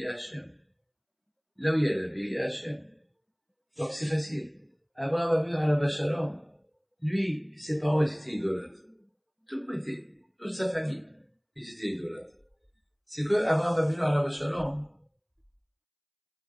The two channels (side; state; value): both; identical; correlation 1.00